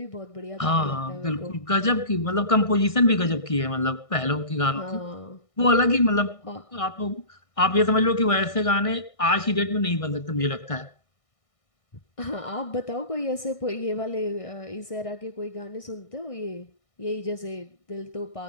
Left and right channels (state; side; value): late; right; 1.6 ms